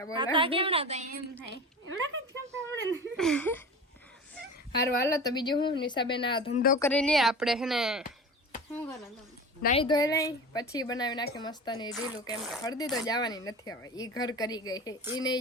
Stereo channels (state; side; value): normal; both; correlation 0.33